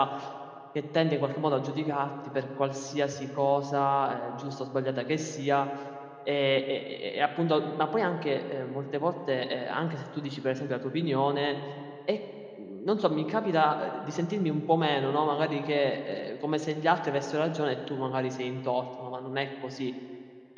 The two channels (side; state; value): both; identical; correlation 1.00